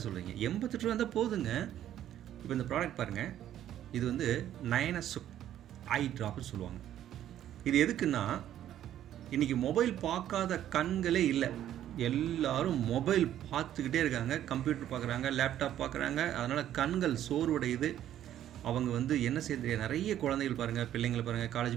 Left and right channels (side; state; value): left; quieter; 11.5 dB